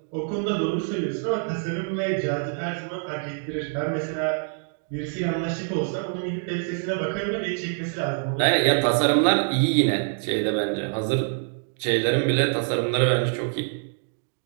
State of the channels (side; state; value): left; silent; 61 dB below the other